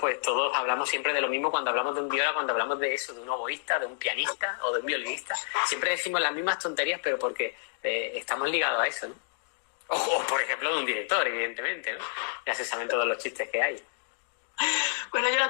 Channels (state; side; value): silent; right; digital silence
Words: todos hablamos siempre de lo mismo cuando hablamos de un viola, cuando hablamos de eso, de un oboísta, de un pianista o de un violinista. Siempre decimos las mismas tonterías, pero porque estamos ligados a eso, ¿no? O por ejemplo de un director, evidentemente, ¿no? Ya se saben todos los chistes que hay. Bueno, yo la